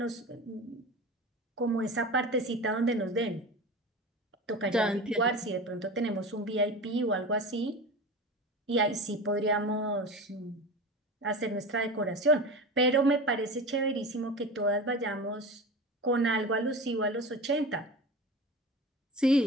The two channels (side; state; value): both; normal; correlation 0.30